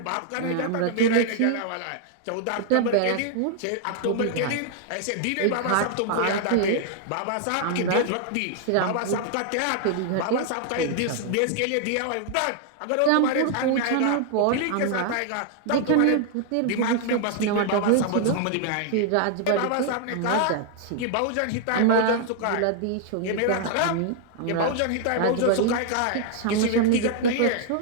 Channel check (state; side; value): different; both; correlation 0.00